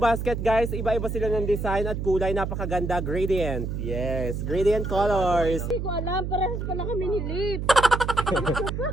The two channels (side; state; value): right; noise; hum, 3 dB below the sound